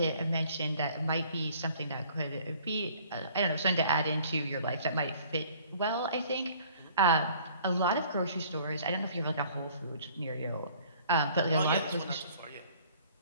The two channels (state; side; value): inverted; both; correlation -0.55